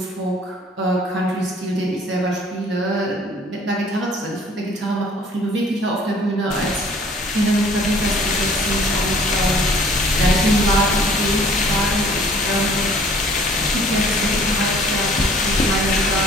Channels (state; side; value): normal; both; correlation 0.55